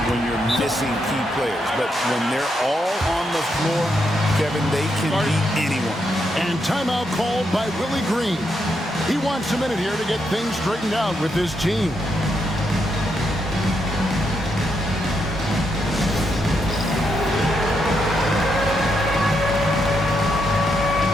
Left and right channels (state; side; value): normal; both; correlation 0.80